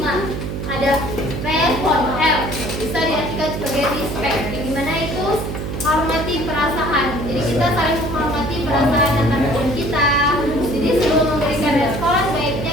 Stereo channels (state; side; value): noise; right; hum, 5 dB below the sound